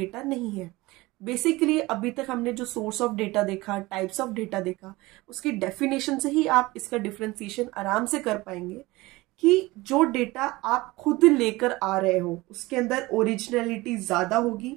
नहीं है। बेसिकली अभी तक हमने जो सोर्स ऑफ डेटा देखा, टाइप्स ऑफ डेटा देखा, उसकी डेफिनेशन से ही आप इसका डिफरेंशिएशन आराम से कर पाएंगे कि जो डेटा आप खुद लेकर आ रहे हो उसके अंदर ओरिजिनलिटी ज्यादा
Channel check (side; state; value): left; quieter; 20.7 dB